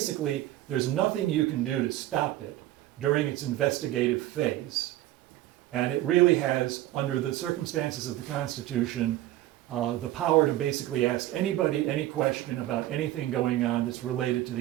there's nothing you can do to stop it during its investigative phase. And it really has, under the circumstances of the Constitution, the power to basically ask anybody any question about anything going on that's related to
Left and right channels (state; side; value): quieter; left; 15.0 dB